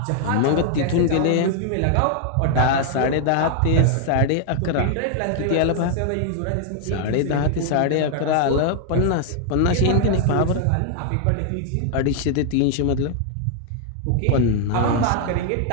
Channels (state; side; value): different; both; correlation 0.00